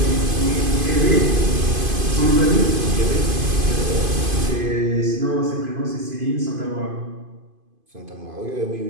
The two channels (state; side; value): late; left; 2.5 ms